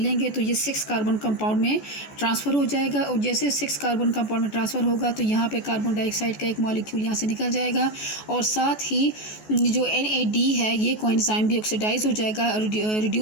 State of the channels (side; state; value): right; late; 14 ms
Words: तो ये 6 कार्बन कंपाउंड में ट्रांसफ़र हो जाएगा। और जैसे 6 कार्बन कंपाउंड में ट्रांसफ़र होगा तो यहाँ पे कार्बन डाइऑक्साइड का एक मॉलिक्यूल यहाँ से निकल जाएगा और साथ ही जो NAD है ये कोएंजाइम भी ऑक्सीडाइज हो जाएगा,